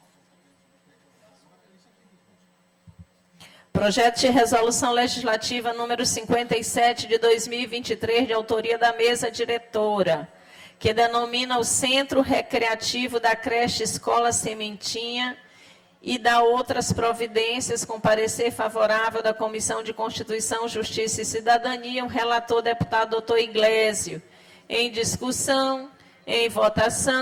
Projeto de resolução legislativa número 57 de 2023, de autoria da mesa diretora, que denomina o Centro Recreativo da Creche Escola Sementinha e dá outras providências com parecer favorável da Comissão de Constituição, Justiça e Cidadania, o relator deputado doutor Iglesio. Em discussão, em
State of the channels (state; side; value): identical; both; correlation 1.00